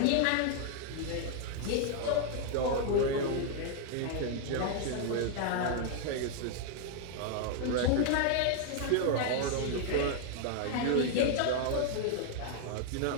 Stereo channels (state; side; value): different; both; correlation 0.00